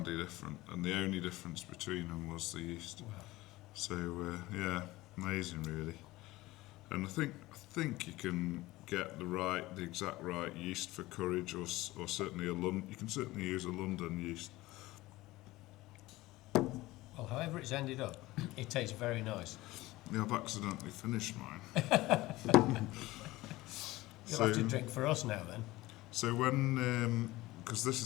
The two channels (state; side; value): quieter; right; 18.8 dB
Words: different. And the only difference between them was the yeast. Wow. So yeah, amazing, really. And I think you can get the exact right yeast for Courage, or certainly you can certainly use a London yeast. Well, however it's ended up, it tastes very nice. Yeah, I've accidentally finished mine. You'll have to drink for us now then. So when, because this